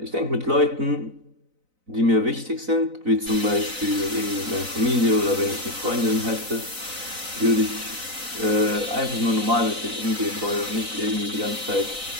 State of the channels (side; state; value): left; late; 4.0 ms